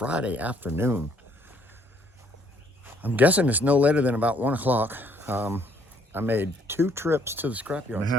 afternoon. I'm guessing it's no later than about 1 o'clock. I made 2 trips to the scrapyard. I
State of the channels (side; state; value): both; normal; correlation 0.65